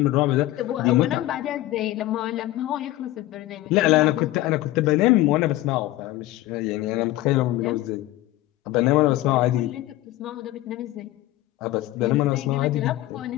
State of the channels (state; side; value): quieter; right; 16.2 dB